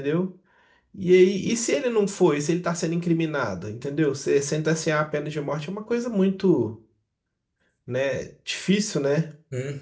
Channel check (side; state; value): both; identical; correlation 1.00